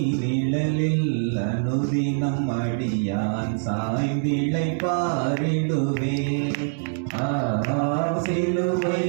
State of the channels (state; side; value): silent; left; digital silence